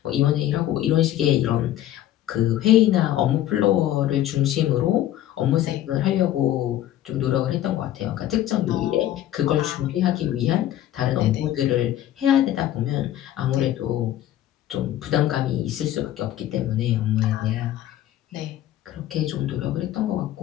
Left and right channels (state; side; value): quieter; right; 12.8 dB